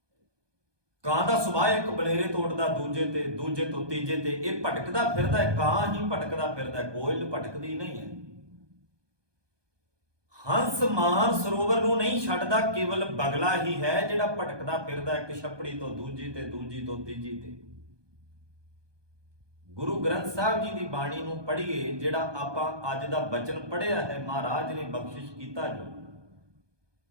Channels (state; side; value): late; left; 1.2 ms